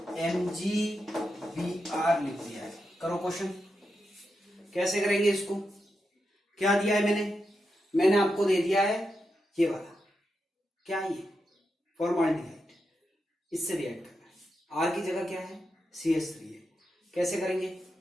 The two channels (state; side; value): normal; both; correlation 0.87